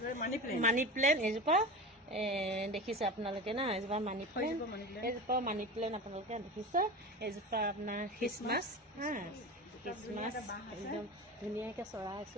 মানি প্লেন এজোপা দেখিছে আপোনালোকে না এজোপা মানি প্লেন আপোনালোকে দেখিছে এজোপা আপোনাৰ খ্ৰীষ্টমাছ একদম ধুনীয়াকৈ চৰাই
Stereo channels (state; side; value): normal; both; correlation 0.29